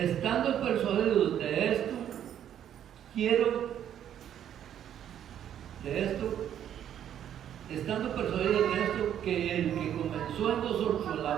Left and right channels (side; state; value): left; quieter; 10.1 dB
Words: persuadidos de esto, estando persuadidos de esto, que el que comenzó en vosotros